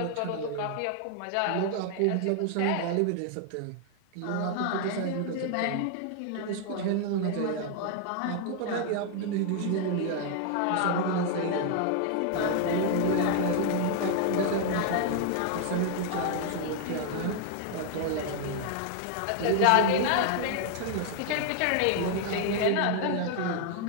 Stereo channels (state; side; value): different; both; correlation 0.00